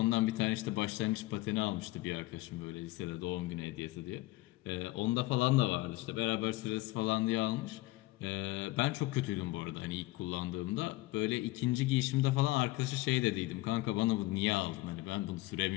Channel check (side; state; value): right; quieter; 19.4 dB